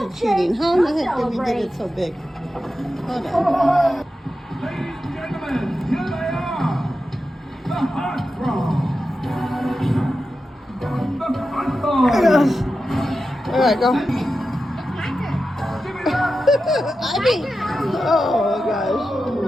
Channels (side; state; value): both; normal; correlation 0.91